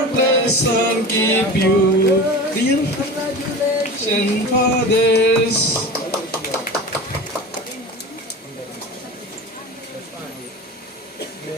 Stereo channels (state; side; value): normal; both; correlation 0.33